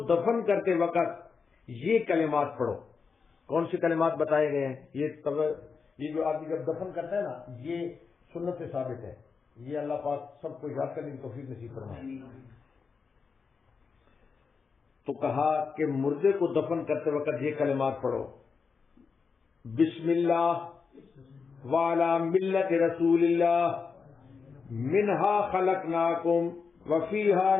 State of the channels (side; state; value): right; quieter; 5.3 dB